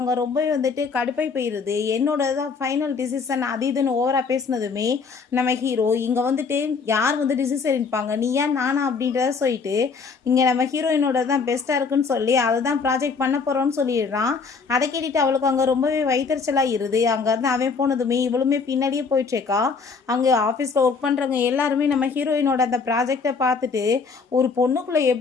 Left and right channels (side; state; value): right; quieter; 5.0 dB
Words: ரொம்பவே வந்துட்டு கடுப்பை போயிருது. என்னோட தான் ஃபைனல் டிசிஷன் அது இதுன்னு ஓவரா பேசினதுமே நம்ம ஹீரோ இங்கே வந்துட்டு யார் வந்து டிசிஷன் எடுப்பாங்க, நீ ஏன் நானா அப்படின்றத சொல்லிட்டு இங்கே நம்ம ஹீரோயினோட தான் பெஸ்ட்டாக இருக்குன்னு சொல்லி அதை தான் ப்ராஜெக்ட் பண்ண போகிறோன்னு சொல்லிடுறான். அதை கேட்டுட்டு அவளுக்கு அங்கே ரொம்பவே வயிற்றுச்சலாக இருது. அங்கேருந்து அவன் போனதுமே இவளுமே பின்னாடியே போயிட்டுருக்கா. அங்கே ஆஃபீஸில் ஒர்க் பண்ணுறவங்க எல்லாருமே நம்ம ஹீரோயினோட அந்த ப்ராஜெக்டை பார்த்துட்டு, ஒரு பொண்ணுக்குள்ளே